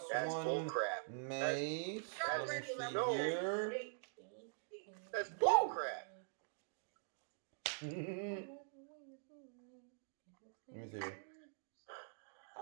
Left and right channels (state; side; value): silent; left; digital silence